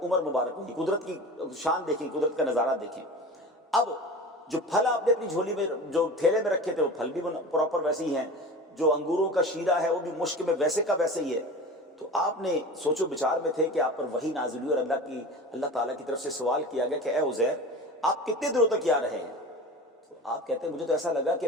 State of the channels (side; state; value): both; normal; correlation 0.34